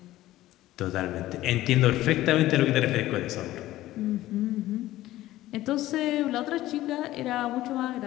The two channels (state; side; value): quieter; right; 15.6 dB